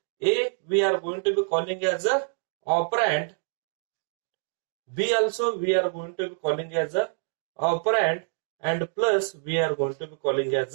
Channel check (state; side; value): silent; left; digital silence